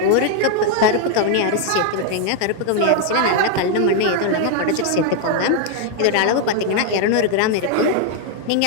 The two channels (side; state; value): both; different; correlation 0.00